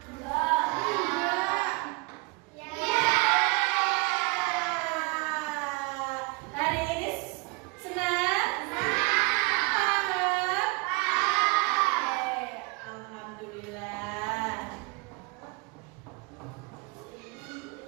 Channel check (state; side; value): quieter; left; 28.0 dB